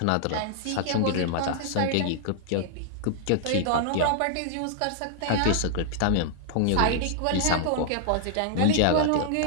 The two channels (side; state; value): both; different; correlation -0.01